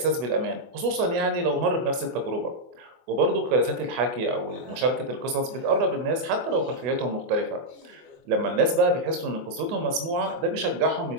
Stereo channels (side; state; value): left; late; 24 ms